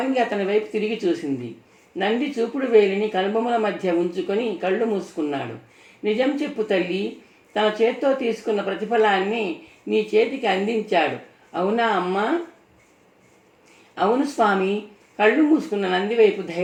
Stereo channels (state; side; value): identical; both; correlation 1.00